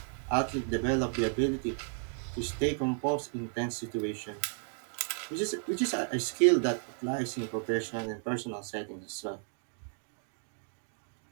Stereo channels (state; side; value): silent; left; 56 dB below the other